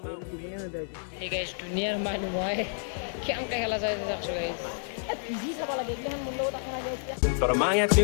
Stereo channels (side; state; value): right; silent; digital silence